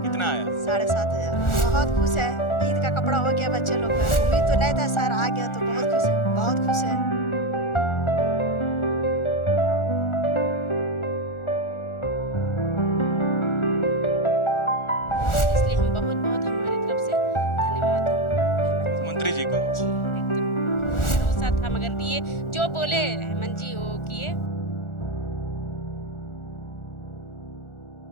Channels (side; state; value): right; late; 1.4 ms